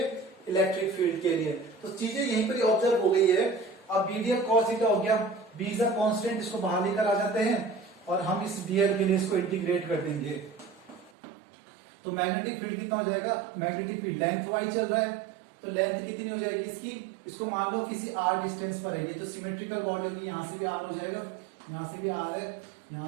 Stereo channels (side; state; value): left; drops out; at 11.1 s